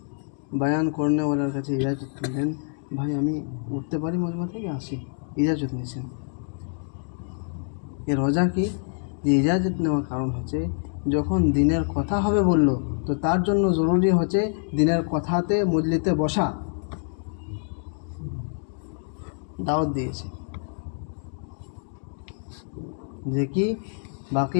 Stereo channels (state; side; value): silent; right; 57 dB below the other